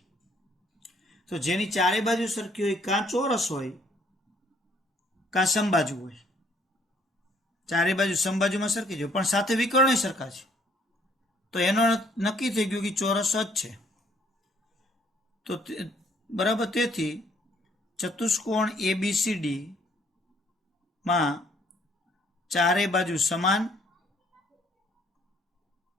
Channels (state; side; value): normal; both; correlation 0.64